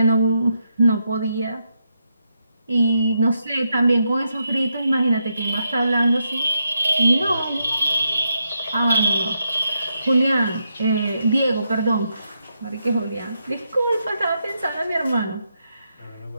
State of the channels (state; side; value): inverted; both; correlation -0.82